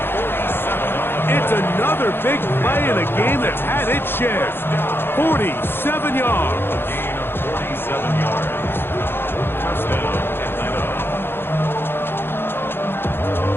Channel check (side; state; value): right; late; 0.10 ms